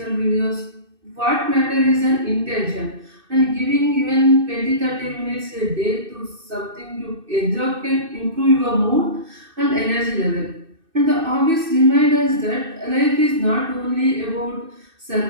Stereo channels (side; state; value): left; late; 2.6 ms